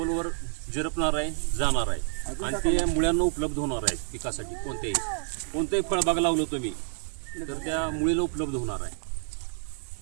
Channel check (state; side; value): silent; left; 58 dB below the other